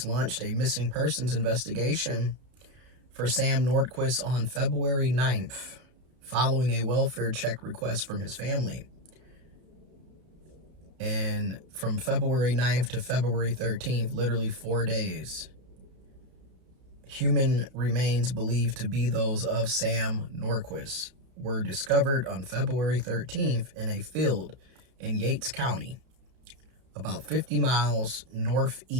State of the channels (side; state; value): left; late; 32 ms